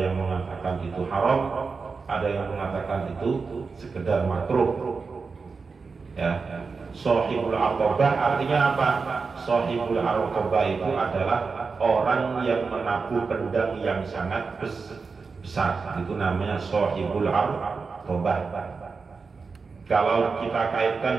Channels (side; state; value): left; quieter; 4.7 dB